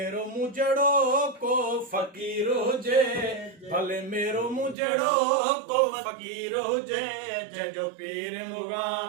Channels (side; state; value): left; drops out; at 4.8 s